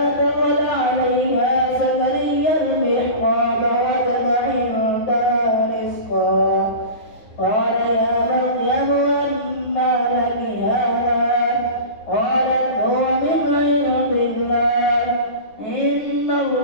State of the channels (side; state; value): right; late; 9.7 ms